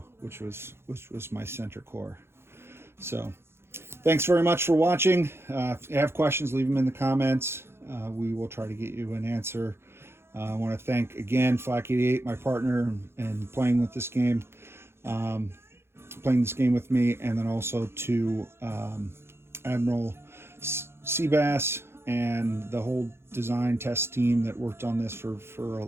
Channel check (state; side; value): late; left; 0.12 ms